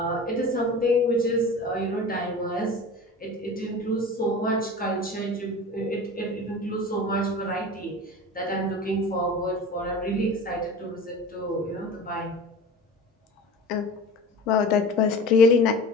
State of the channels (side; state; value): both; normal; correlation 0.36